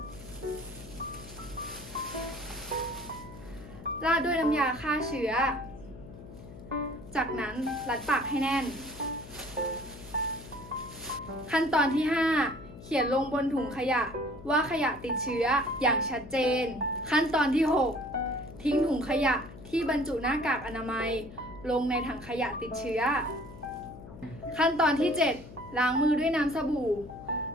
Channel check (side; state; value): left; noise; hum, 16 dB below the sound